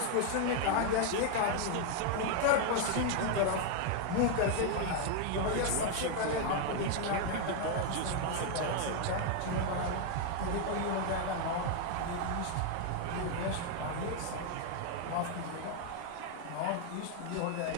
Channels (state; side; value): different; both; correlation 0.00